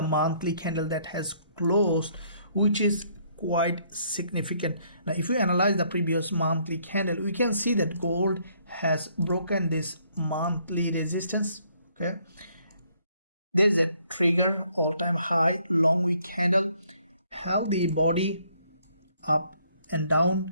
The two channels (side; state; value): both; inverted; correlation -0.67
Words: monthly candle that has closed, which is quite significant. Now if we analyze the previous monthly candle, we can see that gold has broken this monthly resistance. Okay, there's a trigger all-time high long wick candle, held the body up and